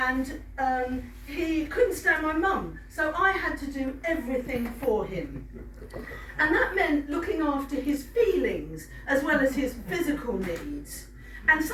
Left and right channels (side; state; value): both; identical; correlation 1.00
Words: he couldn't stand my mum, so I had to do everything for him. And that meant looking after his feelings as well as his physical needs. And